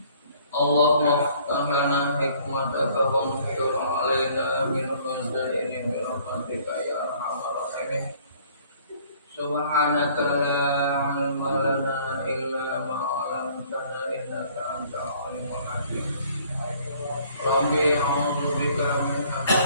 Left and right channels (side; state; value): both; inverted; correlation -0.57